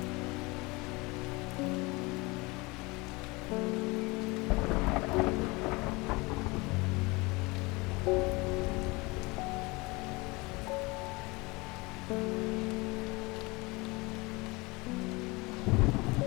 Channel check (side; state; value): right; quieter; 24.9 dB